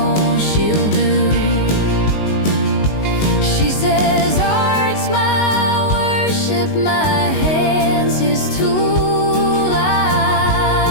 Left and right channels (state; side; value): late; right; 19 ms